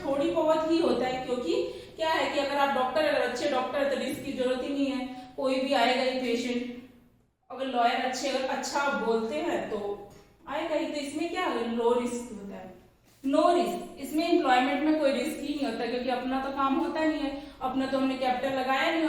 थोड़ी बहुत ही होता है, क्योंकि क्या है कि अगर आप डॉक्टर, अगर अच्छे डॉक्टर तो रिस्क की जरूरत ही नहीं है, कोई भी आएगा ही पेशेंट। अगर लॉयर अच्छे, अगर अच्छा बोलते हैं तो आएगा ही। तो इसमें क्या है? लो रिस्क होता है, नो रिस्क। इसमें एम्प्लॉयमेंट में कोई रिस्क ही नहीं होता, क्योंकि अपना तो काम होता नहीं है, अपना तो हमने कैपिटल लगाया नहीं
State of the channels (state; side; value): identical; both; correlation 1.00